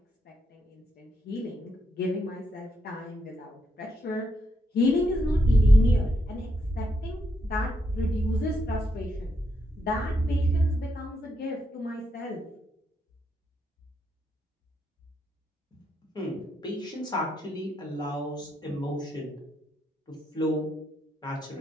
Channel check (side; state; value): both; normal; correlation 0.80